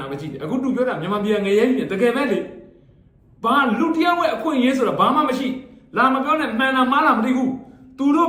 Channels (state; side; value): identical; both; correlation 1.00